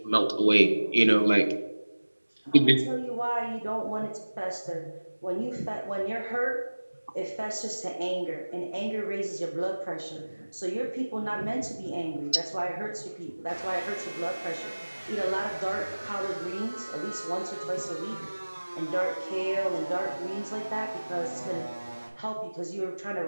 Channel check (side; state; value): both; inverted; correlation -1.00